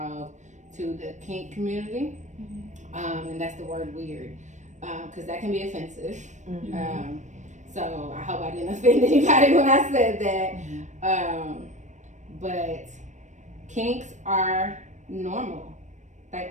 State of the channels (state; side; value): late; left; 0.35 ms